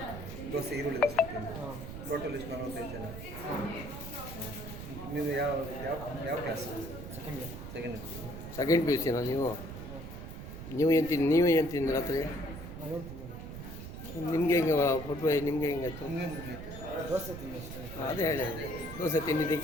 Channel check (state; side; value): noise; right; rumble, 10 dB below the sound